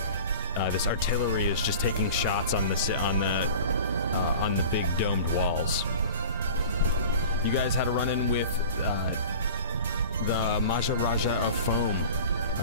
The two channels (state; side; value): inverted; both; correlation -0.40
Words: this artillery is just taking shots on the big domed walls. You guys had a run-in with the Maharaja of Foam,